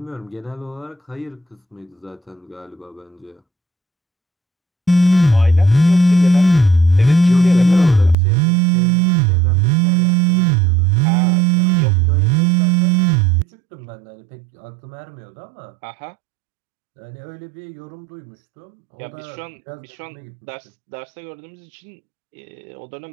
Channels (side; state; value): left; drops out; at 8.2 s